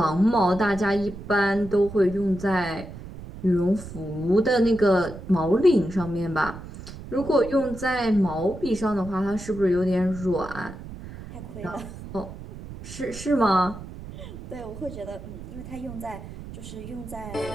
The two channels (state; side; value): noise; right; rumble, 13 dB below the sound